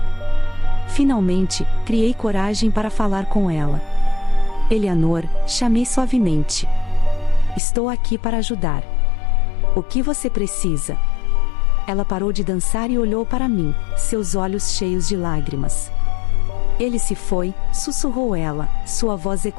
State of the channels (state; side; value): drops out; right; at 7.6 s